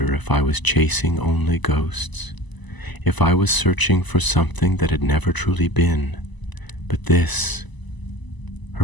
if I was chasing only ghosts, if I was searching for something that had never truly been. But this,"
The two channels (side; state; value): right; late; 1.0 ms